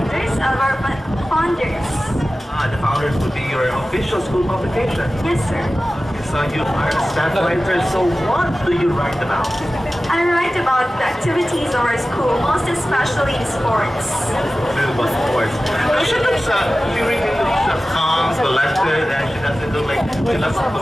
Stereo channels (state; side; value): normal; both; correlation 0.95